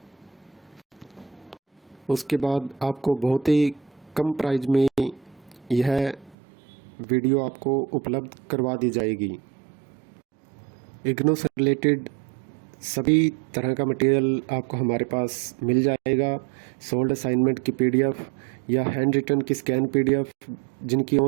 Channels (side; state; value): left; drops out; at 6.4 s